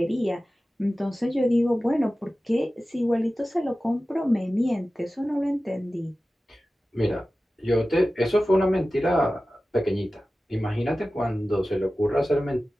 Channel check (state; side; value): normal; both; correlation 0.95